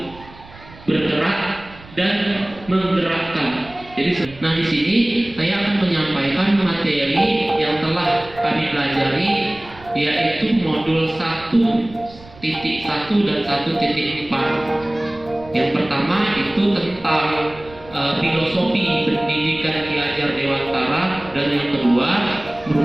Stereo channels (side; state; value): right; noise; rumble, 21 dB below the sound